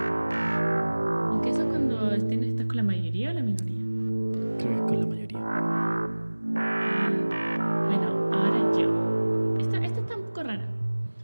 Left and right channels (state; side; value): inverted; both; correlation -1.00